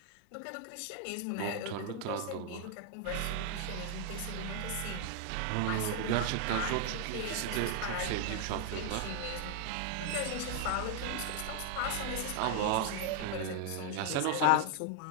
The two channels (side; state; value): both; different; correlation 0.00